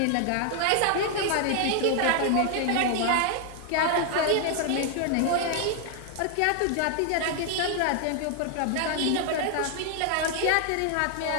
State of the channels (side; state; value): both; different; correlation 0.00